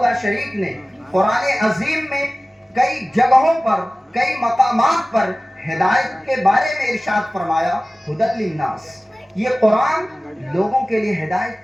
لا شریک نے قرآن عظیم میں کئی جگہوں پر، کئی مقامات پر ہدایت کے بارے میں ارشاد فرمایا، ہدی للناس۔ یہ قرآن لوگوں کے لیے ہدایت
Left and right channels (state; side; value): normal; both; correlation 0.97